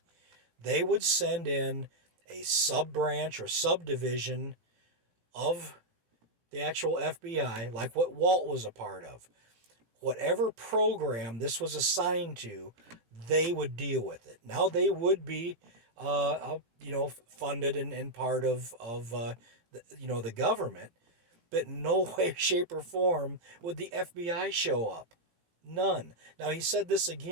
They would send in a sub-branch or subdivision of the actual FBI, like what Walt was a part of. Whatever program this was assigned to, they would deal with it. Now they would be, funded and part of the government, but in no way, shape, or form would the FBI show up. None. Now he said this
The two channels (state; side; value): late; left; 17 ms